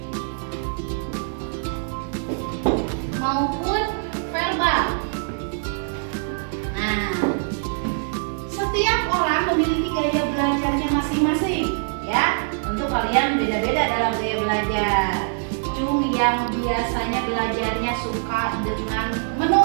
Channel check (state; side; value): silent; left; digital silence